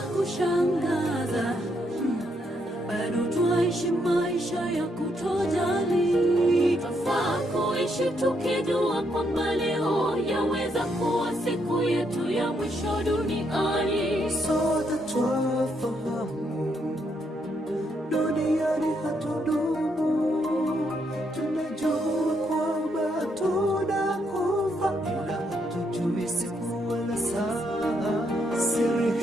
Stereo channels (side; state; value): both; normal; correlation 0.76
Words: kushangaza, bado twaishi maisha ya kutojali. Twafaa kuishi tukijua kwamba leo yaweza kuwa siku yetu ya mwisho duniani. Sote twafahamu duniani hatudumu. Tunajua